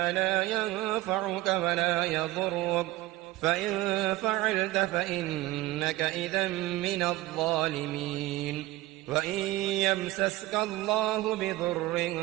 لا ينفعك ولا يضرك، فإن فعلت فإنك إذا من الظالمين. وإن يمسسك الله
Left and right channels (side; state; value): left; quieter; 18.0 dB